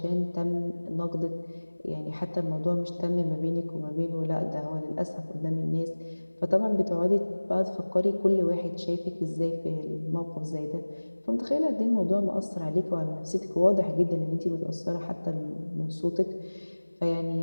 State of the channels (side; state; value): both; inverted; correlation -1.00